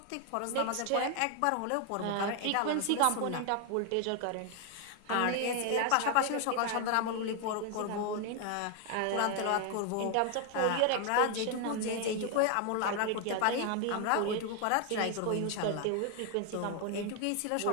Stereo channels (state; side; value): different; both; correlation 0.00